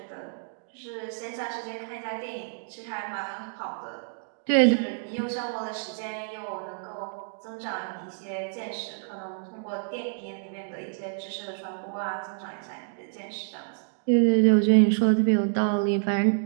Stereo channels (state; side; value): silent; left; digital silence